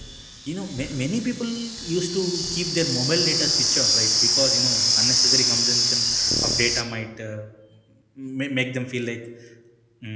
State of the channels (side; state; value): both; identical; correlation 1.00